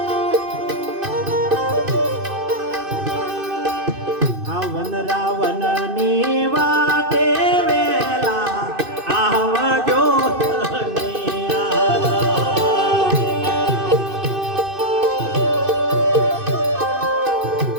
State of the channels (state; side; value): late; left; 2.6 ms